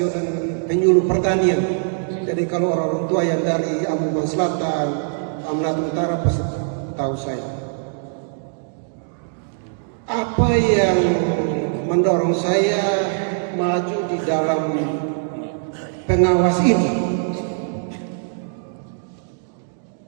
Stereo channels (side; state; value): left; silent; digital silence